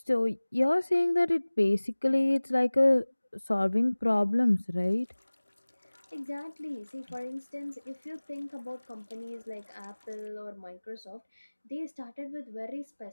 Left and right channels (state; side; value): inverted; both; correlation -1.00